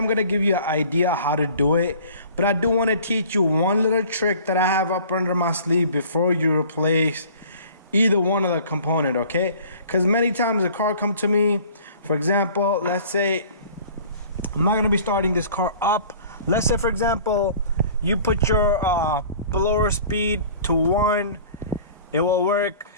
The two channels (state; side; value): inverted; both; correlation -0.48